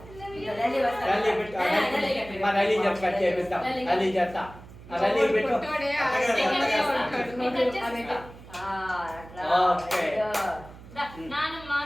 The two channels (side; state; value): right; noise; hum, 18 dB below the sound